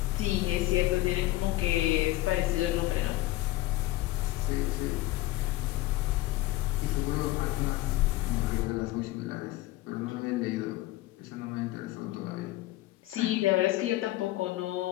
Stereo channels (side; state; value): right; quieter; 17.2 dB